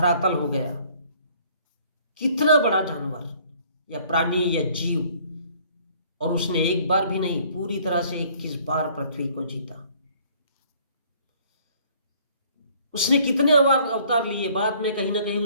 हो गया। कितना बड़ा जानवर या प्राणी या जीव, और उसने एक बार भी नहीं, पूरी तरह से 21 बार पृथ्वी को जीता। उसने कितने अवतार लिए? बाद में कहीं ना कहीं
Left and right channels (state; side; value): inverted; both; correlation -0.58